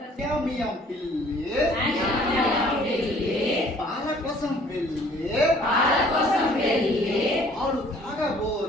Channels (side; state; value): both; normal; correlation 0.56